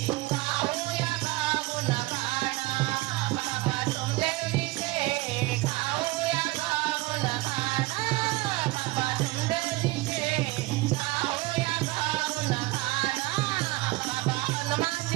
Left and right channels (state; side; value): quieter; left; 20.8 dB